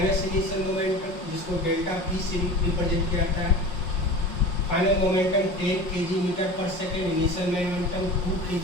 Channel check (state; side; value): late; right; 5.5 ms